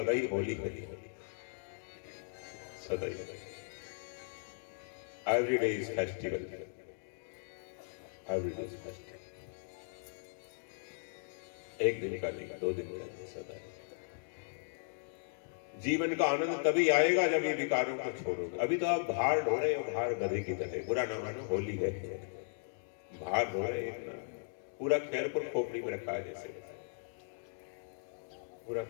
ही होली है, सदा ही। Every day is festival, every day is festival. एक दिन का नहीं, 2 दिन का नहीं, सदा ही। जीवन का आनंद तभी आएगा जब ये विकारों को छोड़ोगे। अभी तो आप भार ढो रहे हो, भार गधे की तरह। बुरा ना मानो, होली है, भार ढो रहे इतना। पूरा खैरपुर खोपड़ी में रखा है जैसे, पूरा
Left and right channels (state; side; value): silent; right; digital silence